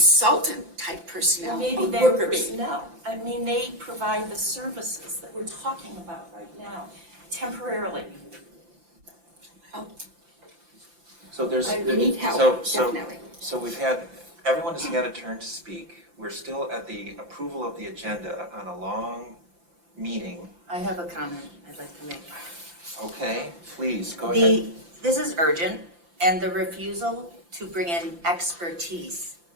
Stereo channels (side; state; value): left; late; 5.8 ms